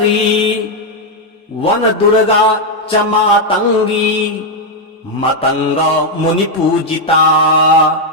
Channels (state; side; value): normal; both; correlation 0.01